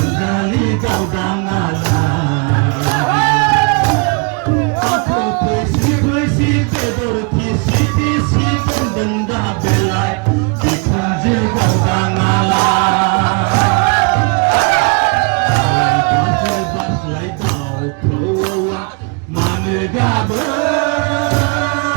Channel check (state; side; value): quieter; left; 33.4 dB